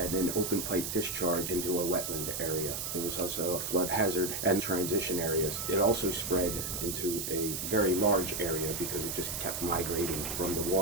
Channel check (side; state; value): right; noise; hiss, 3 dB below the sound